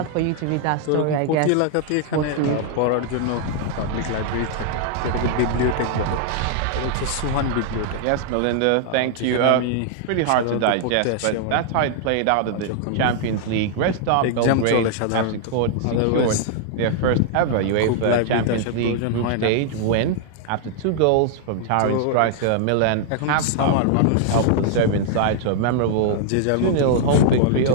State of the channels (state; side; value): different; both; correlation -0.01